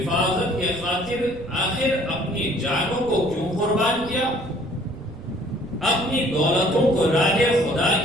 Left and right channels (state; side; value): noise; right; rumble, 16 dB below the sound